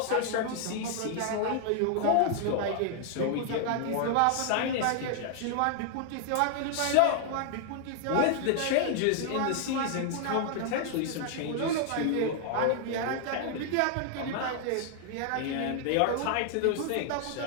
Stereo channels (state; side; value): different; both; correlation 0.00